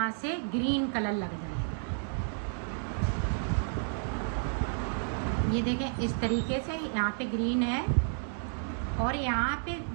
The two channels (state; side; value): silent; left; digital silence